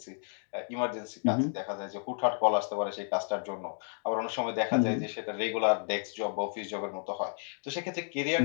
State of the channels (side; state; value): right; silent; 57 dB below the other